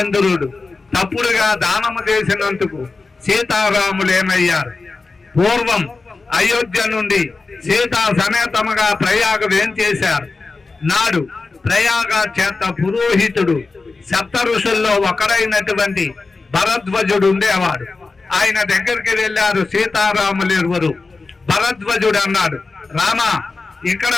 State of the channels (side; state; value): right; quieter; 3.9 dB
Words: తప్పుడుగా దానము చేసినందుకు సీతారాములు ఏమయ్యారు? పూర్వం అయోధ్య నుండి సీతా సమేతముగా ప్రయాగ వేంచేశారు. నాడు ప్రయాగ చేత పురోహితుడు సప్త ఋషుల్లో ఒకరైనటువంటి భరద్వజుడు ఉండేవాడు. ఆయన దగ్గరికి వెళ్ళారు సీతారాములు ఇరువురు. భరద్వజుడు అన్నాడు, రామ, ఇక్కడ